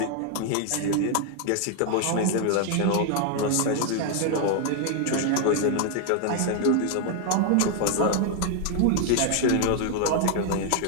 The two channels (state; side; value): different; both; correlation 0.00